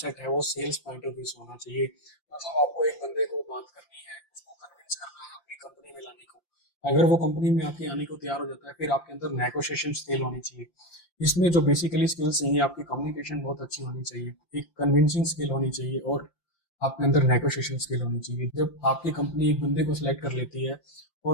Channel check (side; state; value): right; late; 5.8 ms